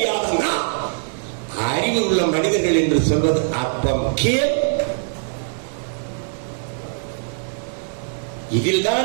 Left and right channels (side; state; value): left; silent; 64 dB below the other